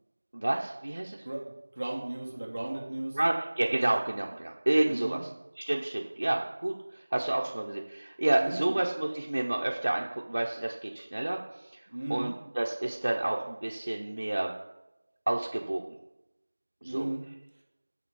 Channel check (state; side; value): inverted; both; correlation -1.00